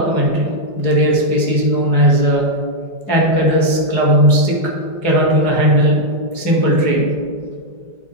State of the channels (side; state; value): right; late; 4.8 ms